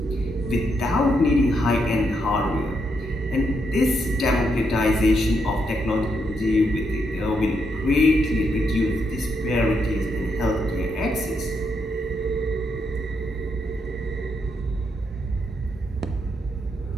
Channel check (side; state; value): both; normal; correlation 0.79